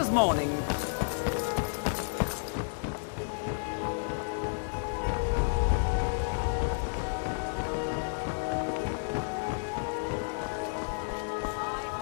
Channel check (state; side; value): silent; right; digital silence